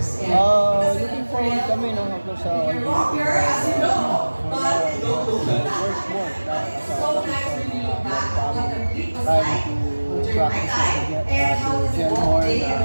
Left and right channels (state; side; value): inverted; both; correlation -1.00